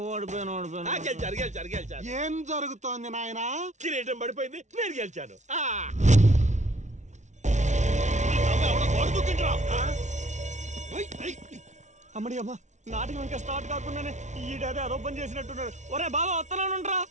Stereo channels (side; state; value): left; late; 0.34 ms